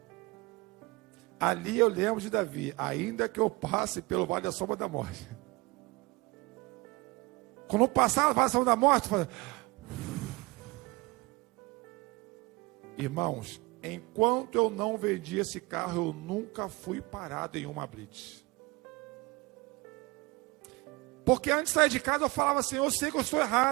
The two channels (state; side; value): quieter; left; 24.8 dB